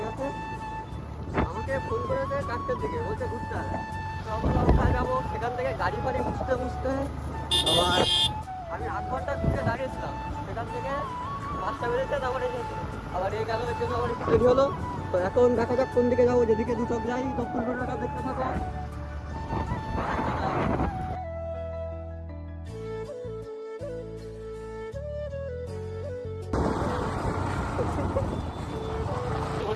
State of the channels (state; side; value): identical; both; correlation 1.00